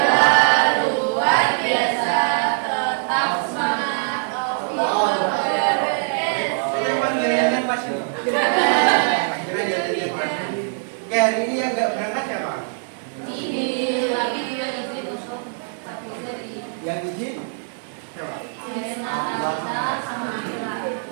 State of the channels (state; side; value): silent; left; digital silence